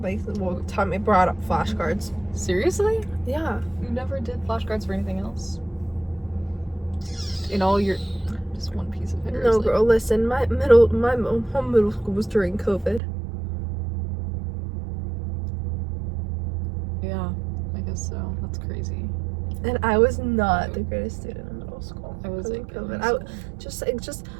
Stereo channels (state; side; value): drops out; left; at 13.0 s